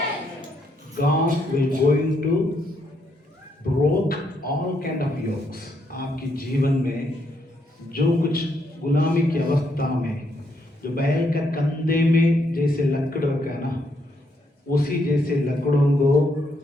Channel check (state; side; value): normal; both; correlation 0.75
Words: God will going to broke all kind of yokes। आपकी जीवन में जो कुछ गुलामी की अवस्था में जो बैल का कंधे में जैसे लकड़ रखा है ना, उसी जैसे लकड़ों को